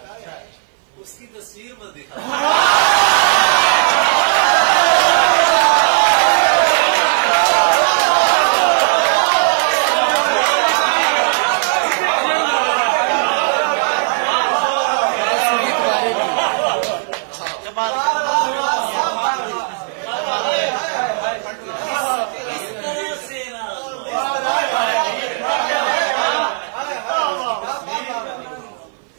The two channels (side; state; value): left; silent; 59 dB below the other